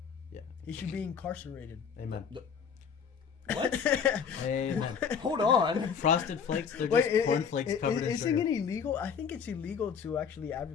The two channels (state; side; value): quieter; right; 6.8 dB